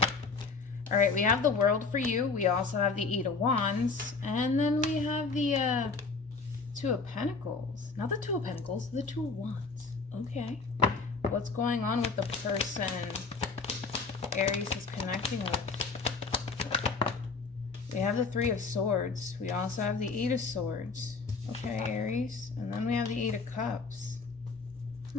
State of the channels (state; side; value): quieter; right; 4.4 dB